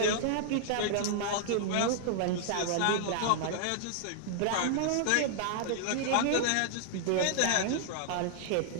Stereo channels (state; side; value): different; both; correlation -0.01